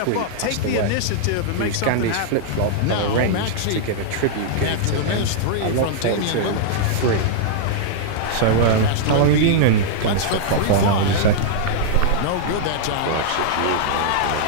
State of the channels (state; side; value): different; both; correlation -0.01